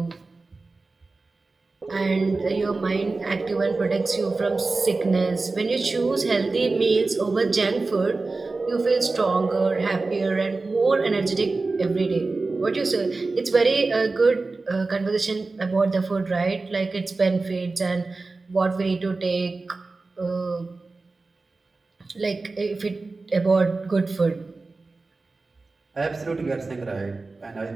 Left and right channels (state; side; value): quieter; left; 3.6 dB